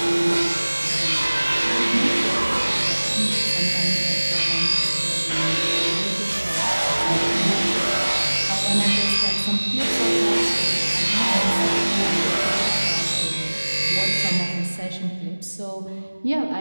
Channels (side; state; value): both; inverted; correlation -1.00